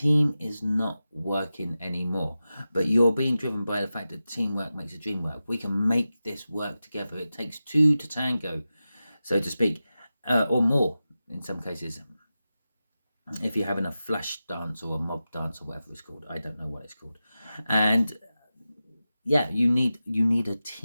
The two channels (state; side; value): inverted; both; correlation -0.93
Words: is not working anymore, but you're being driven by the fact that teamwork makes the dream work. We can make this work together. It takes two to tango, so to speak. Or more in some cases, if you're having a flash dance or a mob dance or whatever it's called. I don't know what it's called. And yeah, you need a